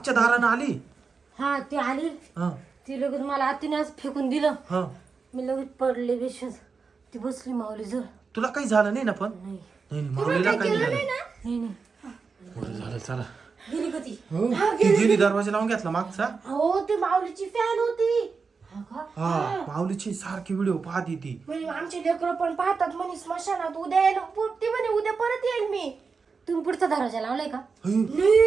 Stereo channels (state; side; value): quieter; left; 4.9 dB